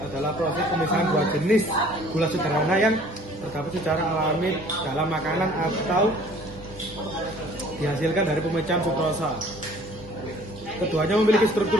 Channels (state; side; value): normal; both; correlation 0.53